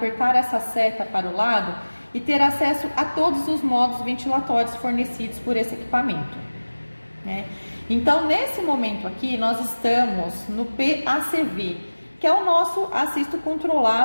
essa seta para o lado e ter acesso a todos os modos ventilatórios fornecidos por esse equipamento. né? Então, nesse momento aqui, nós estamos no PACV, que é o nosso assisto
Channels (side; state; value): both; inverted; correlation -1.00